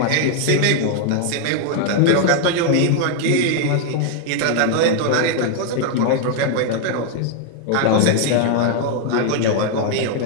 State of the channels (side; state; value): both; different; correlation 0.00